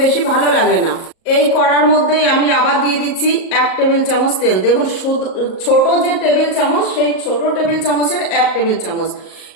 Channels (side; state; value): right; late; 38 ms